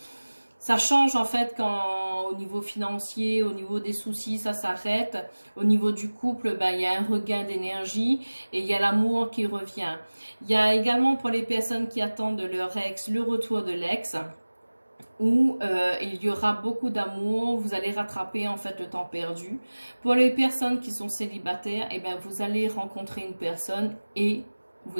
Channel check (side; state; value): both; inverted; correlation -1.00